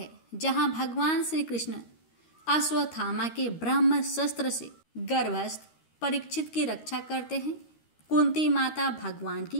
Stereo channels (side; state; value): right; late; 13 ms